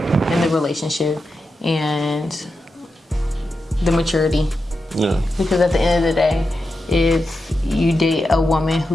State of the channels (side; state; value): both; normal; correlation 0.89